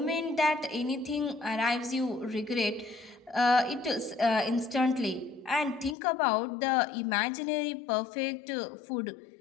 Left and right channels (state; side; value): drops out; right; at 6.0 s